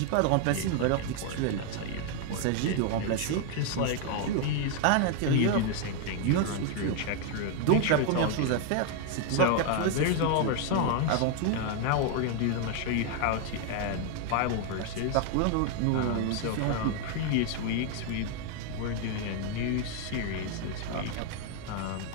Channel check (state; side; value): different; both; correlation 0.00